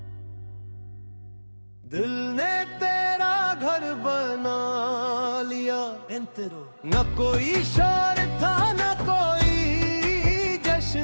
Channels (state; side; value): inverted; both; correlation -1.00